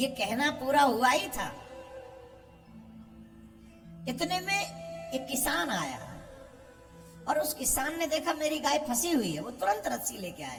कहना पूरा हुआ ही था। इतने में एक किसान आया और उस किसान ने देखा मेरी गाय फंसी हुई है। वो तुरंत रस्सी लेके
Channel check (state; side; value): identical; both; correlation 1.00